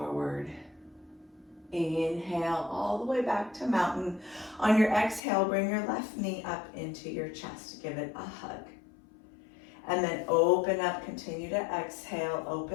Inhale all the way back to mountain. On your exhale, bring your left knee up into your chest. Give it a hug. And then open up, continue to exhale,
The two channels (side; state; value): right; drops out; at 5.2 s